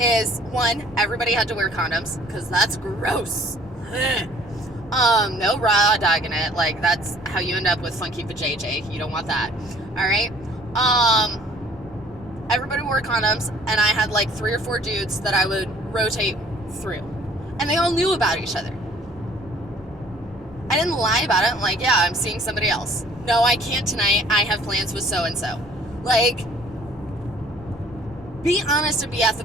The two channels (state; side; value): normal; both; correlation 0.56